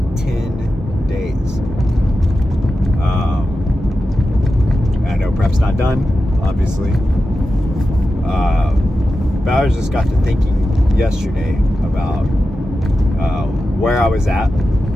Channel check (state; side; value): normal; both; correlation 0.92